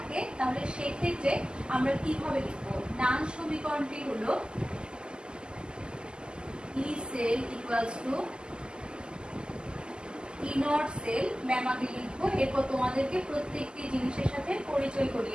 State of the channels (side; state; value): left; late; 0.047 ms